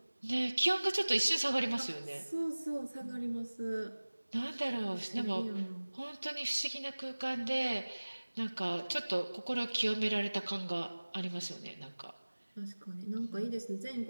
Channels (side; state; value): both; inverted; correlation -1.00